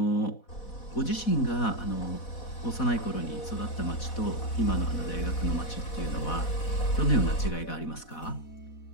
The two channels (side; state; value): right; late; 4.1 ms